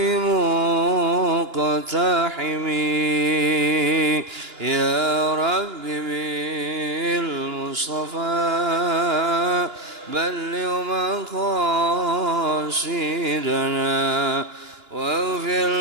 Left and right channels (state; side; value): late; left; 2.9 ms